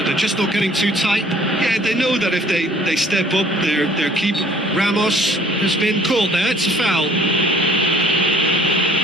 they're just not getting too tight. Yeah, they know that if they step up, their keeper. Ramos has been caught there. It's a foul.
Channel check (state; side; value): normal; both; correlation 0.56